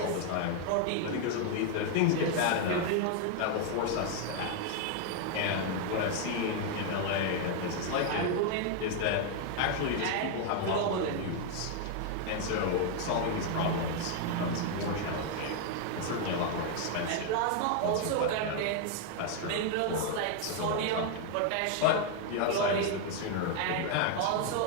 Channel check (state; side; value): different; both; correlation 0.00